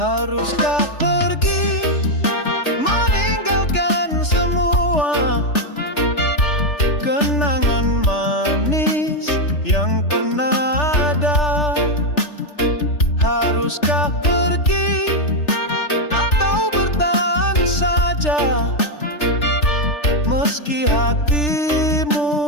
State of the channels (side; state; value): right; late; 3.4 ms